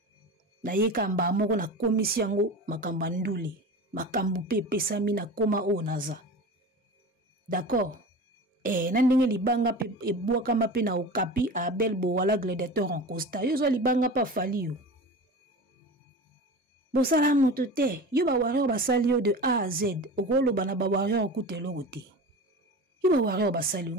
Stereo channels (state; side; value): normal; both; correlation 0.32